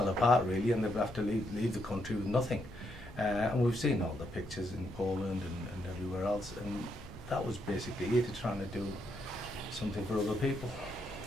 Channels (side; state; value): both; normal; correlation 0.78